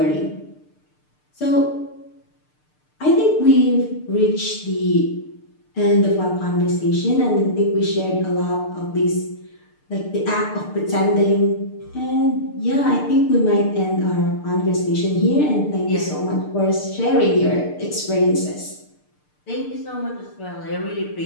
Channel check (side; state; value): right; late; 6.7 ms